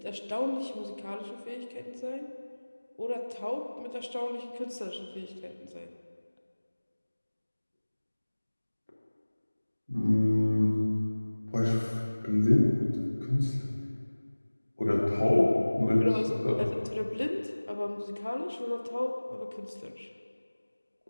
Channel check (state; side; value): inverted; both; correlation -1.00